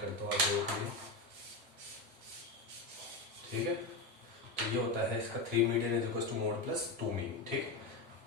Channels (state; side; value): quieter; right; 3.3 dB